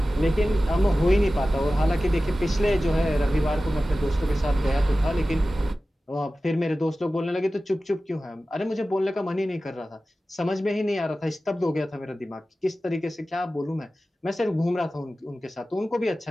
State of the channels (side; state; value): both; normal; correlation 0.95